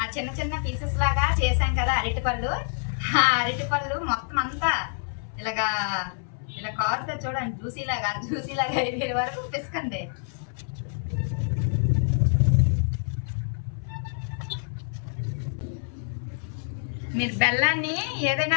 ఆ చిన్న చిన్న పీసెస్ లాగా చేసాం కదా అరటిపళ్ళు, ఆ అరటిపళ్ళు మొత్తం అంతా ఇలాగా ఇలా కారుతో చూడండి, జ్యూసీలాగా అయిపోయే వరకు పిసకండి. మీరు బెల్లాన్ని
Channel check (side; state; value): right; silent; 60 dB below the other